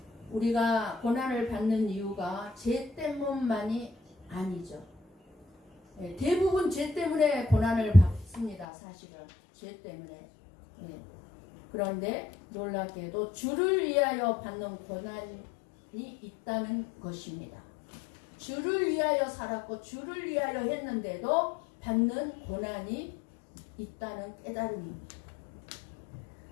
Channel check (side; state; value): right; drops out; at 8.7 s